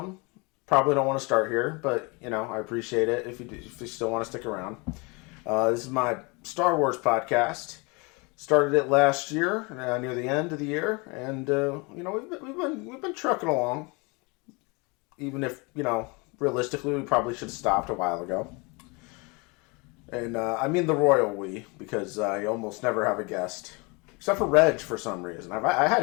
Probably don't want to start here, but, I appreciate it if you still want to stick around. This is my Star Wars podcast. Started it last year, near the end of the year, and, we've been trucking along. Even if, realistically, we probably should have stopped a while ago. And I mean the royal we, because you almost never have a guest. Except for Reg, for some reason. I had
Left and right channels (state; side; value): quieter; right; 28.6 dB